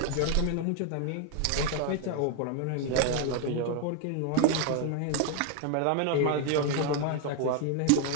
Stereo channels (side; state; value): both; different; correlation 0.01